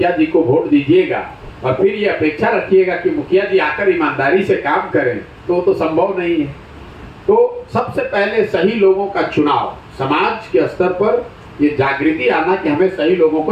जी को वोट दीजिएगा और फिर ये अपेक्षा रखिएगा कि मुखिया जी आकर ईमानदारी से काम करें, तो संभव नहीं है। तो सबसे पहले सही लोगों का चुनाव, समाज के स्तर पर ये जागृति आना कि हमें सही लोगों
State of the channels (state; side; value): identical; both; correlation 1.00